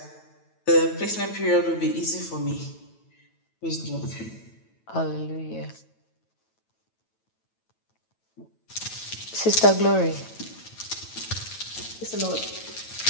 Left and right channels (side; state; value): right; late; 9.1 ms